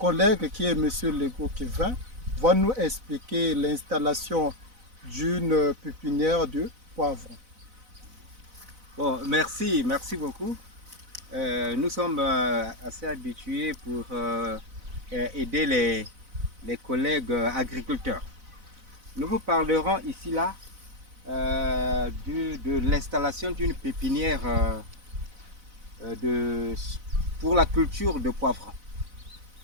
qui est Monsieur Lego Kevin va nous expliquer l'installation d'une pépinière de poivrons. Bon, merci beaucoup. Nous sommes assez habitués pour aider les collègues agriculteurs. Nous vous parlerons ici là de l'installation d'une pépinière de, pour la culture de poivrons.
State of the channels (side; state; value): left; late; 4.0 ms